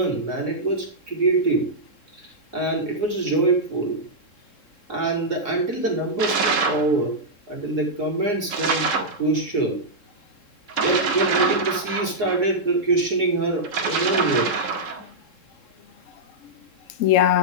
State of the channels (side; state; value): right; late; 3.7 ms